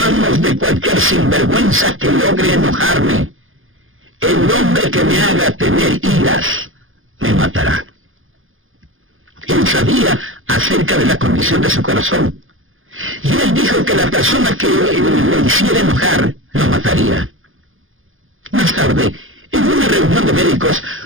de cualquier sinvergüenza que logre enojarme. El hombre que me haga tener iras me matará. Él sabía acerca de la condición de su corazón. Y él dijo que la persona que lo hiciera enojar lo mataría. Más tarde, en una reunión de médicos,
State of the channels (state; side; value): late; left; 0.59 ms